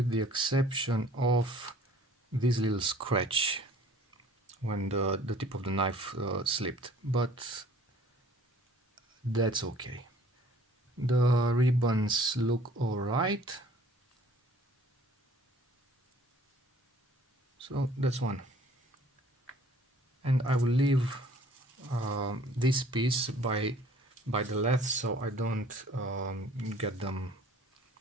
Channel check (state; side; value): normal; both; correlation 0.54